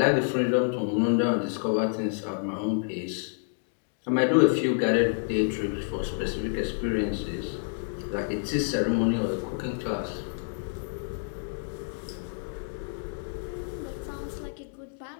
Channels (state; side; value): silent; right; digital silence